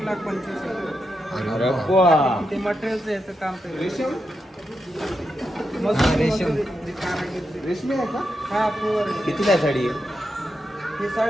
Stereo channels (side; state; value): both; normal; correlation 0.86